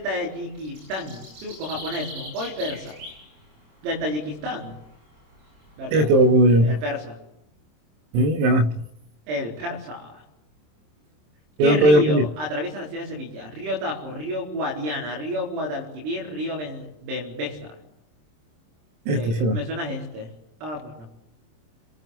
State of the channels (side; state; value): left; late; 26 ms